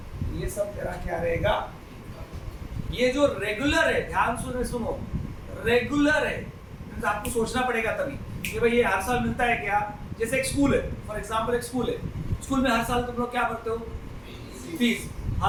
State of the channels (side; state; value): both; identical; correlation 1.00